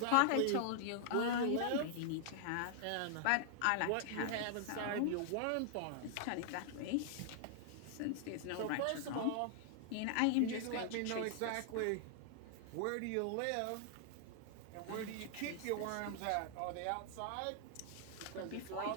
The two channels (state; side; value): different; both; correlation -0.01